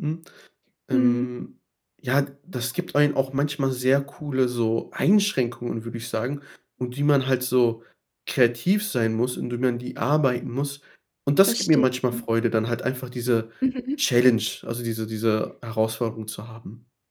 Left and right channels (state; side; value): identical; both; correlation 1.00